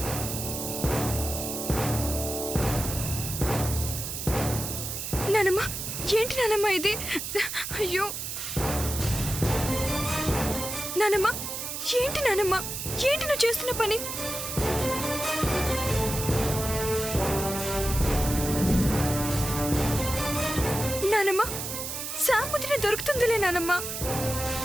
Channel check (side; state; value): right; noise; hiss, 5 dB below the sound